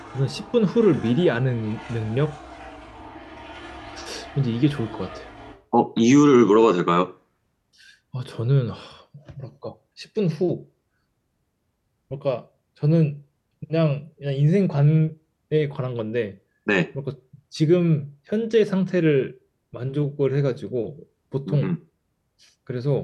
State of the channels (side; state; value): both; identical; correlation 1.00